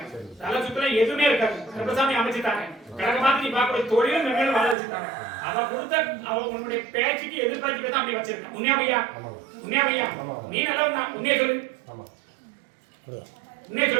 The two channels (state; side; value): drops out; left; at 4.8 s